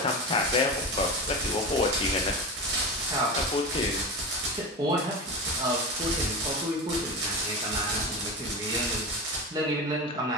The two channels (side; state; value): both; normal; correlation 0.24